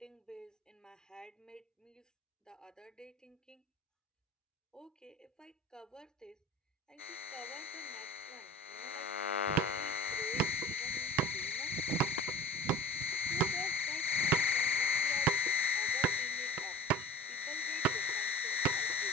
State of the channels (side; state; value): both; normal; correlation 0.39